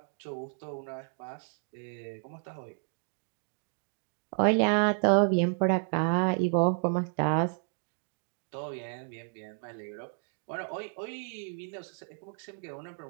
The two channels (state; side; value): silent; left; 57 dB below the other